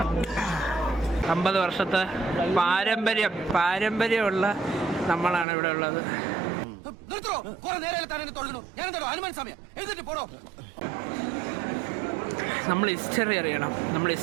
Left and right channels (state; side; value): drops out; left; at 5.5 s